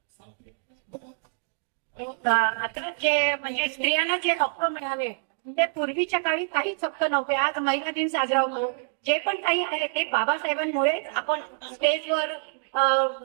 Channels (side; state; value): left; silent; digital silence